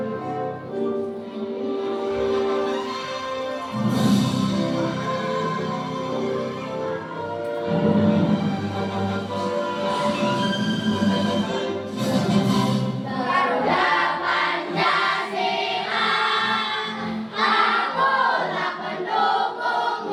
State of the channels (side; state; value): both; identical; correlation 1.00